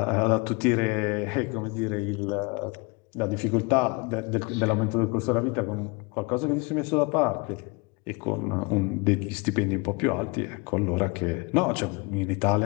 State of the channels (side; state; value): right; quieter; 28.5 dB